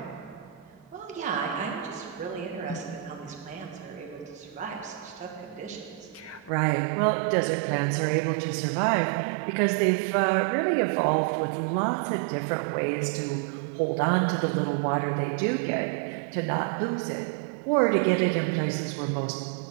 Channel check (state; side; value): drops out; left; at 6.5 s